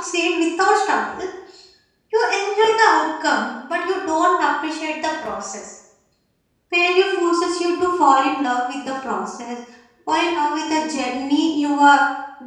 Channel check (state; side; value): identical; both; correlation 1.00